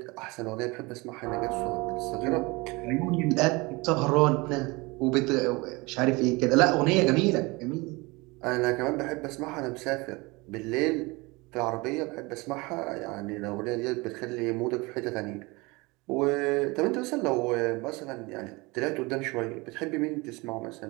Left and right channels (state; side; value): quieter; left; 24.7 dB